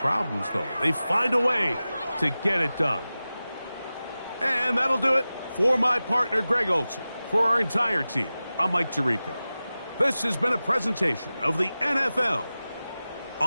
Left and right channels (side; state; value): both; inverted; correlation -0.95